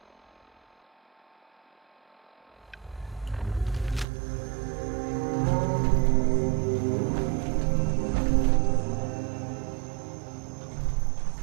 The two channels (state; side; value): drops out; left; at 4.0 s